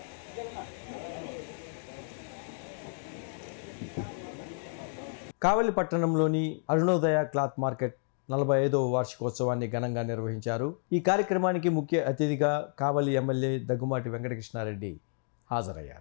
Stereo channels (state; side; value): silent; right; digital silence